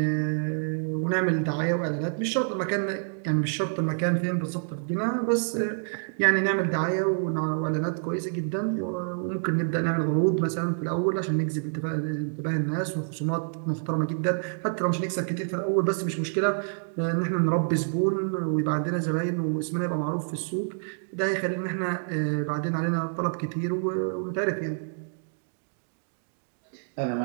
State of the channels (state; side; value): silent; left; digital silence